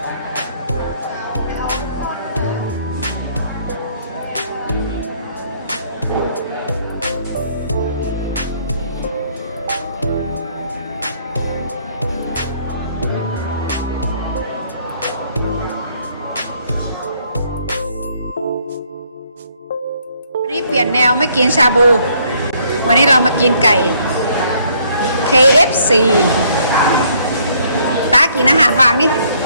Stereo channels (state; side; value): inverted; both; correlation -0.66